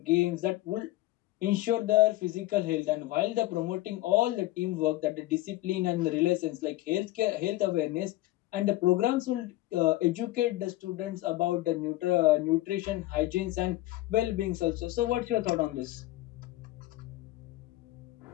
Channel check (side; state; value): right; quieter; 17.0 dB